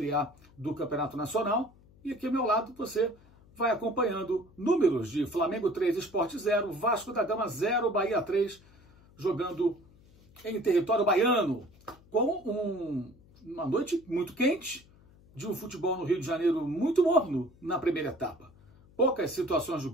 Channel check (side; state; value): left; noise; hum, 26 dB below the sound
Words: A do Campeonato Nacional, e aqui ao meu lado você vai acompanhando números de Flamengo 3, Sport 0, Vasco da Gama 0, Bahia 3, jogando em território baiano, com uma noite muito quente, de um futebol no Rio de Janeiro muito morno na primeira etapa. Poucas situações de